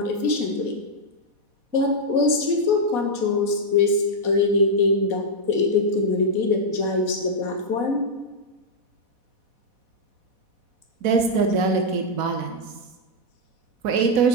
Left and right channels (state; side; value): late; left; 4.1 ms